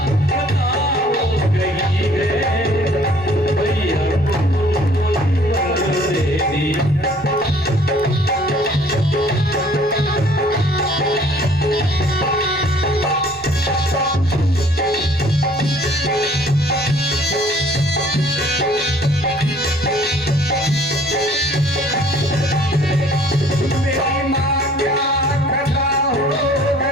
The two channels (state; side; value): normal; both; correlation 0.56